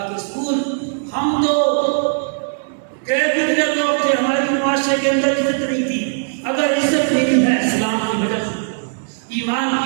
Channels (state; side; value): silent; left; digital silence